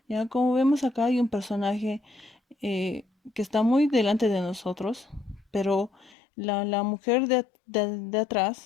Ya como vemos acá hay un personaje eh, que está muy delante de nosotros, pero la mujer de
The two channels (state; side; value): drops out; right; at 6.2 s